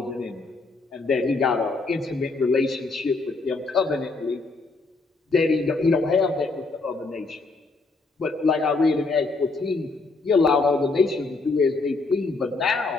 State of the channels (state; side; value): quieter; right; 3.7 dB